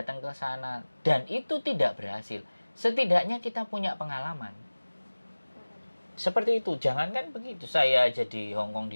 ke sana dan itu tidak berhasil, setidaknya kita punya pengalaman. Seperti itu, jangankan begitu. Saya jadi Hong Kong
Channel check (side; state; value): both; inverted; correlation -1.00